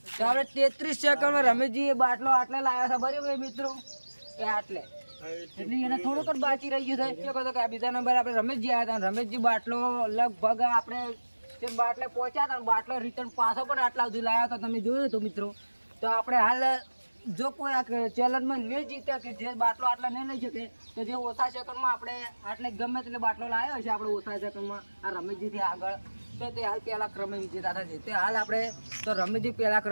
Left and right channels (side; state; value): both; inverted; correlation -1.00